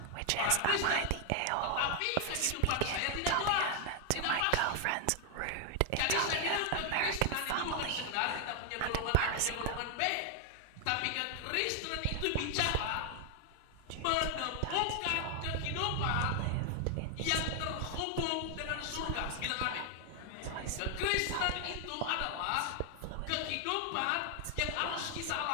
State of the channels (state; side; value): different; both; correlation 0.00